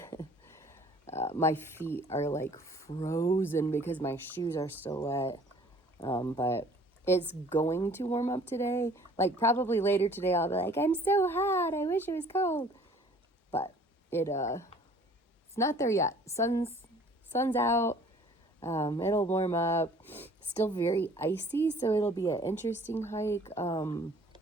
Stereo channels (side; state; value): both; normal; correlation 0.53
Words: My feet are like frozen because my shoes are still wet. But it's going to warm up today. Like probably later today I'll be like, I'm so hot. I wish it was cold. But it's not there yet. Sun's out. It'll warm up. Still very icy, so it'll be an interesting hike.